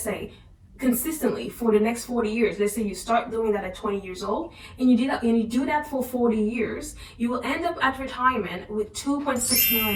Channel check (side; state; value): both; identical; correlation 1.00